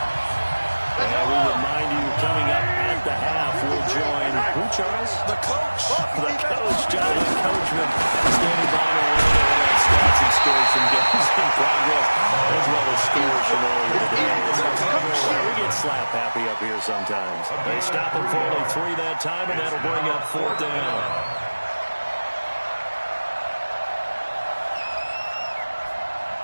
And we remind you, coming up at the half, we'll join, who, Charles? The coach. The coach, Jonathan Coachman, standing by to learn about stats and scores from games in progress, as well as scores from earlier today. We get slap happy up here sometimes. They stop him for only 3 that time, and that'll bring up 4th down.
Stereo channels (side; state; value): both; inverted; correlation -1.00